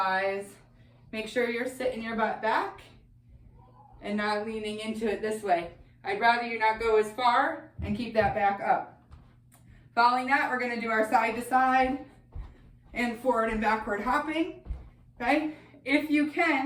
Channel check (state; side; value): identical; both; correlation 1.00